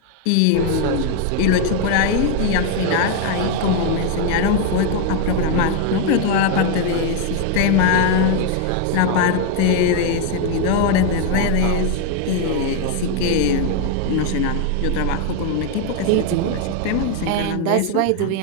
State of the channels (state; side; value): different; both; correlation 0.01